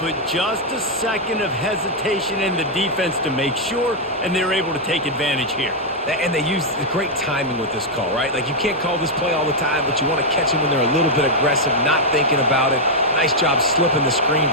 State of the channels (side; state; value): both; normal; correlation -0.02